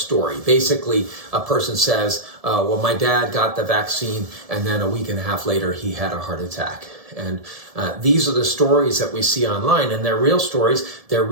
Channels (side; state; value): left; late; 1.7 ms